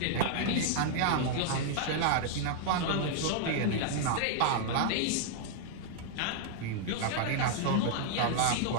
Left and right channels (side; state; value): both; different; correlation -0.01